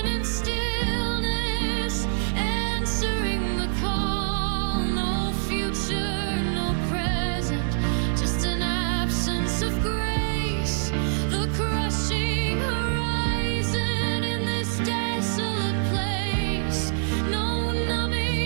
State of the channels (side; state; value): left; silent; 61 dB below the other